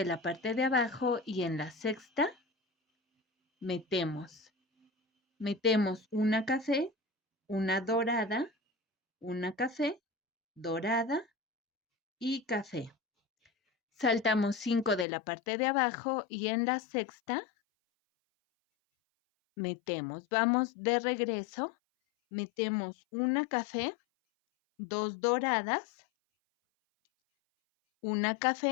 la parte de abajo y en la sexta metemos una café, una dorada, una café, dorada y café. Saltamos 5 de la parte de abajo y en la sexta metemos. Vamos de regreso. Metemos una café, 2 doradas, una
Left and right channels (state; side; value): drops out; right; at 15.1 s